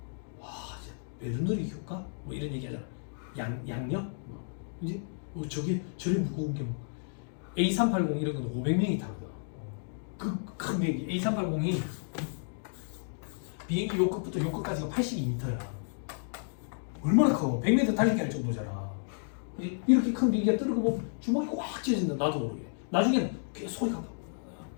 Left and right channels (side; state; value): right; silent; digital silence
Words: 와, 진짜 배드누리 효과? 뭐 이런 얘기 하잖아. 양력? 그지? 저리 무거운 게 뭐 A380 이런 건 500명이 타거든. 그 큰 비행기 A380이 비행기 요 끝부터 요 끝까지가 82m야. 얼마나 커? 100m 달리기 할 정도잖아. 이렇게 큰 비행기가 뜨는 거 보면 주먹이 꽉 쥐어진다. 나도 모르게. 나중에는 소리가 아파.